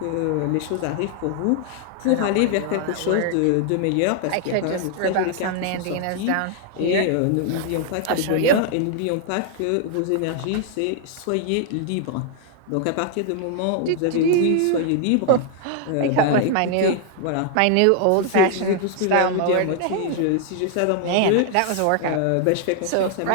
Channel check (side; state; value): both; different; correlation 0.00